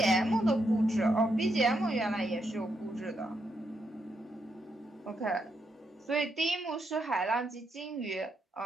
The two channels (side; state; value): both; normal; correlation 0.80